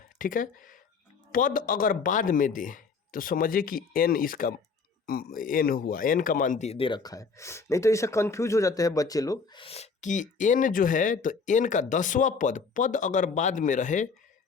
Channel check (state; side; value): quieter; right; 5.0 dB